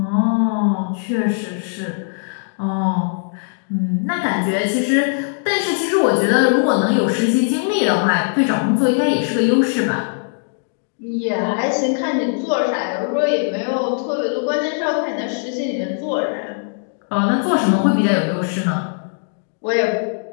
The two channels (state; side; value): silent; right; digital silence